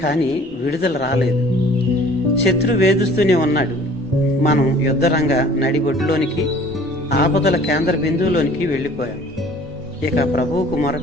కానీ విడుదల రాలేదు. శత్రు వేధిస్తూనే ఉన్నాడు. మనం యుద్ధరంగ నడిబొడ్డులోనికి, ఆపదల కేంద్ర బిందువులోనికి వెళ్ళిపోయాం. ఇక ప్రభువుకు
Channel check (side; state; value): both; normal; correlation 0.50